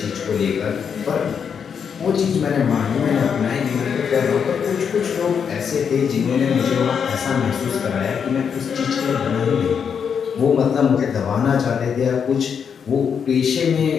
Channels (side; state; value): right; quieter; 7.0 dB